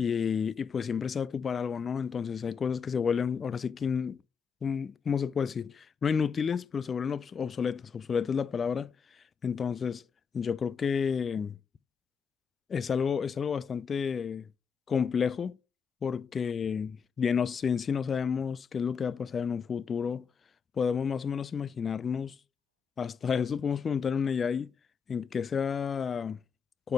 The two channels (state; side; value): quieter; right; 6.3 dB